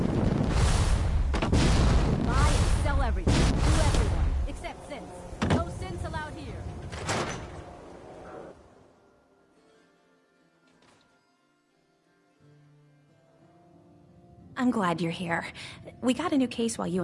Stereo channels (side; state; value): both; identical; correlation 1.00